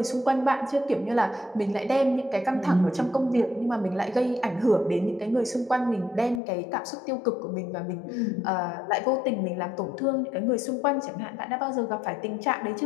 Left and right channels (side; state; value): right; drops out; at 6.4 s